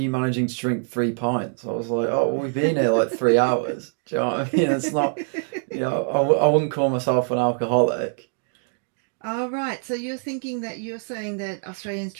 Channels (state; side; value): silent; left; 63 dB below the other